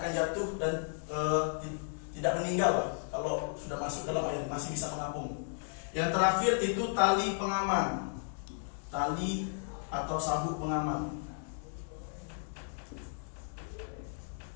jatuh dan tidak meninggal. Kalau sudah masuk dalam air masih bisa mengapung. Yang terakhir itu tali pengaman, tali atau sabuk pengaman.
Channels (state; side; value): silent; right; digital silence